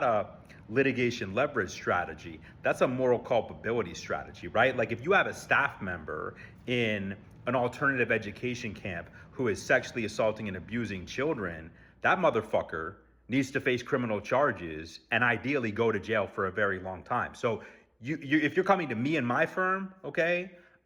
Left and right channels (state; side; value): identical; both; correlation 1.00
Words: a litigation leverage strategy. That's a moral culpability strategy, right? Like if you have a staff member in an alternative education camp who is sexually assaulting and abusing children, that motherfucker needs to face criminal charges and ideally go to jail for a very long time. So if you're coming to me and my firm, okay,